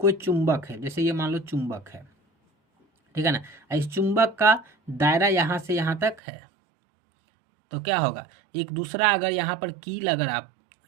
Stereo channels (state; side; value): drops out; left; at 6.2 s